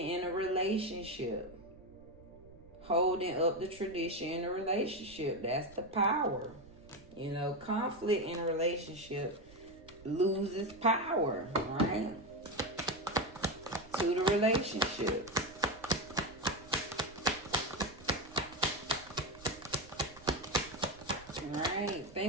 a relationship, holding up the tradition in a relationship. That's the power. You know, conflict in a relationship loses power, right? To the relationship. Right.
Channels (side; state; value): right; noise; rumble, 22 dB below the sound